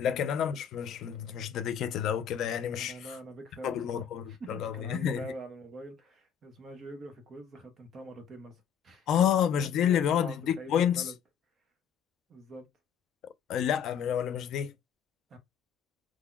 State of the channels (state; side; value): quieter; right; 8.3 dB